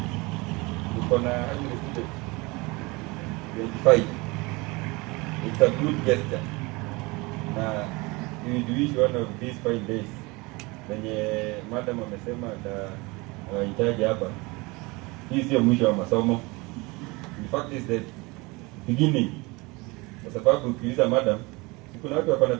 tuko na 25. It's a good gesture. Na we wish one of these 5 days wenye madam amesema hitaji hapa, hii sio mwisho wa masomo. In fact is the beginning. Kwa sababu ukiuliza madam, kuna watu wako na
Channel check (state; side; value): quieter; left; 24.8 dB